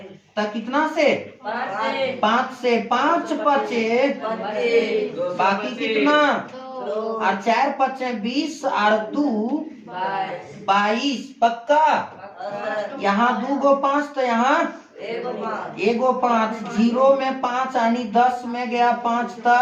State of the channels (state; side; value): identical; both; correlation 1.00